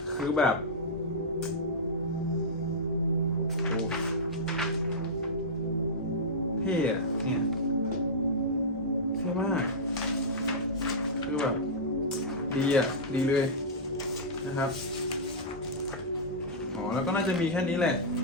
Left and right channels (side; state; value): both; normal; correlation -0.11